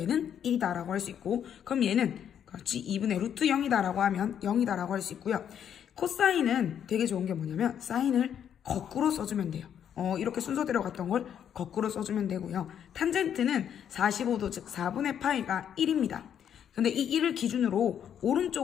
얘는 1이다라고 할 수 있고, 그럼 얘는 그렇지 2분의 루트 0이다라고 하면 0이다라고 할 수 있고요. 코사인은 되게 좋은 게 뭐냐면 사인을 거꾸로 써주면 돼요. 이렇게 순서대로 갔던 걸 거꾸로 써주면 되고요. 탄젠트는 45도 즉 4분의 파이가 1입니다. 근데 이 1을 기준으로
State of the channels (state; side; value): quieter; right; 9.0 dB